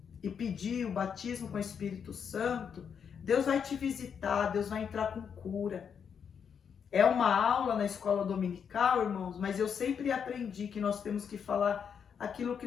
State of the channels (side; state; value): right; quieter; 7.2 dB